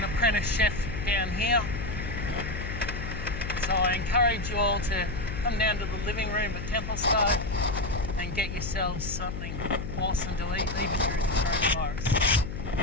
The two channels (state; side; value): noise; left; hum, 6 dB below the sound